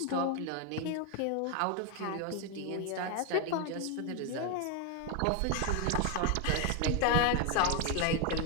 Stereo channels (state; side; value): different; both; correlation 0.01